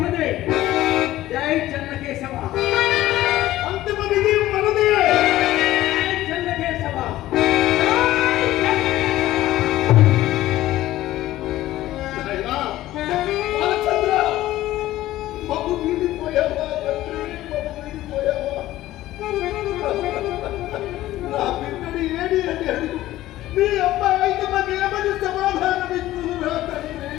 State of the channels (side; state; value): right; quieter; 15.2 dB